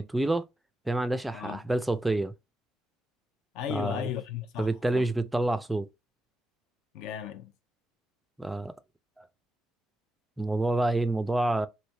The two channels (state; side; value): normal; both; correlation 0.88